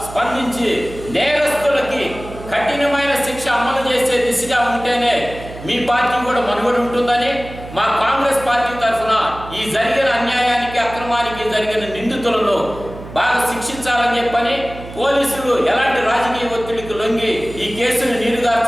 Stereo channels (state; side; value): noise; right; hum, 14 dB below the sound